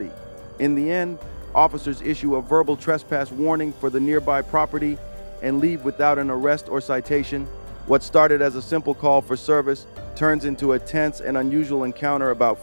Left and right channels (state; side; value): inverted; both; correlation -1.00